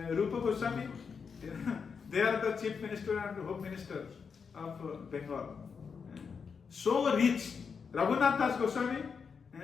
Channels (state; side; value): quieter; right; 5.9 dB